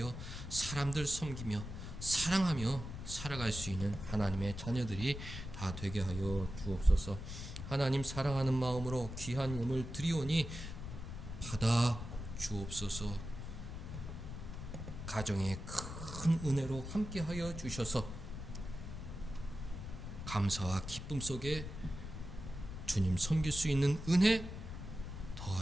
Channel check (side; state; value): left; noise; rumble, 8 dB below the sound